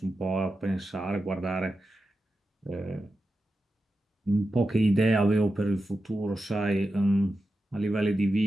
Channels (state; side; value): normal; both; correlation 0.91